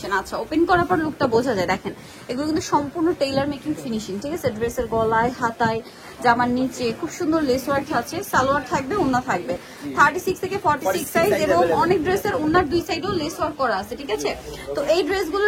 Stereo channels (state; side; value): identical; both; correlation 1.00